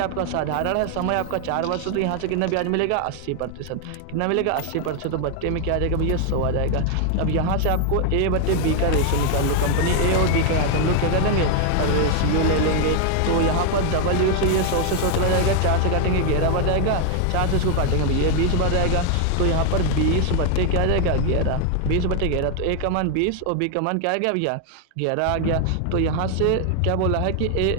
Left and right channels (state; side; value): different; both; correlation 0.00